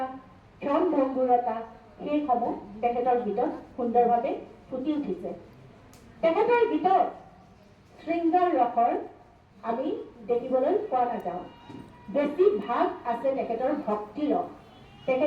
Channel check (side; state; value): both; identical; correlation 1.00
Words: ক্ষণভংগুৰতা সেইসমূহ তেখেতৰ ভিতৰত সুন্দৰভাৱে ফুটি উঠিছে তেখেতৰ গীতত শৃংগাৰ ৰসৰ আমি দেখিবলৈ পোৱা নাযাওঁ। বেছি ভাগ আছে তেখেতৰ ভক্তি ৰস।